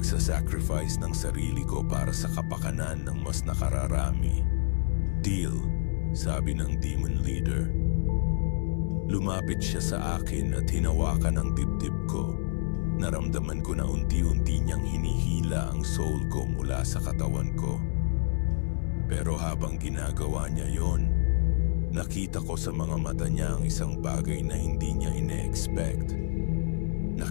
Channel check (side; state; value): right; silent; 59 dB below the other